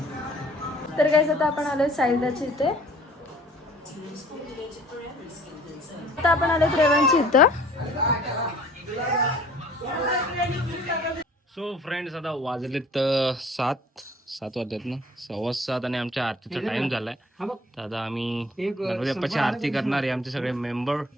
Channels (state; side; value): normal; both; correlation 0.53